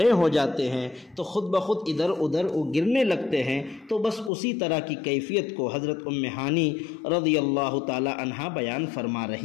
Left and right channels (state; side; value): drops out; right; at 4.3 s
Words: ہو جاتے ہیں تو خود بخود ادھر ادھر وہ گرنے لگتے ہیں۔ تو بس اسی طرح کی کیفیت کو حضرت ہانی رضی اللہ تعالی عنہا بیان فرما